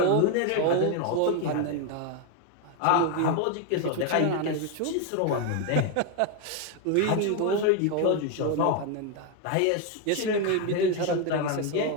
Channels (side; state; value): both; different; correlation 0.01